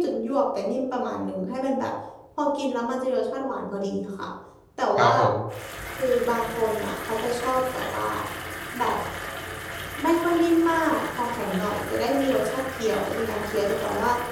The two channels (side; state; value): both; identical; correlation 1.00